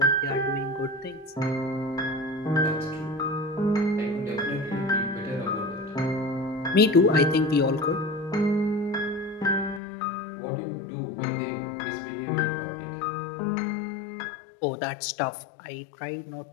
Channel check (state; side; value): drops out; right; at 9.8 s